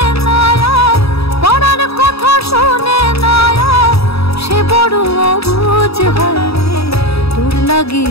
না, পরাণ কথা শোনে না, সে বড় অবুঝ হয় রে। তোর লাগি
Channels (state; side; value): late; right; 0.78 ms